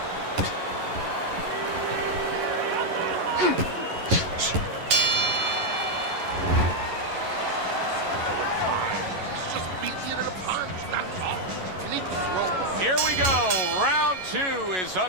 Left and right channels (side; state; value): left; late; 11 ms